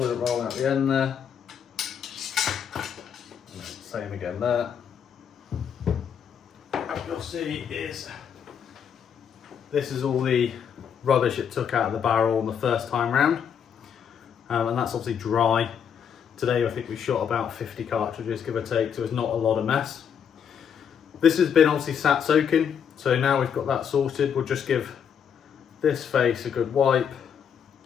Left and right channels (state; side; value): quieter; right; 7.8 dB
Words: roll out the end there. Same again there. What you'll see is this is all the rubbish it took out of the barrel on the first time round, and that's obviously dry. Today I think we shot about 50 cartridges, give or take, so it's not a lot of mess. This has been obviously sat soaking, so now we've got that sorted, we'll just give this face a good wipe